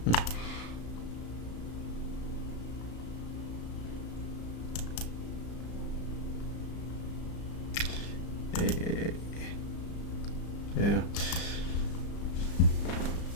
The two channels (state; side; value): late; right; 34 ms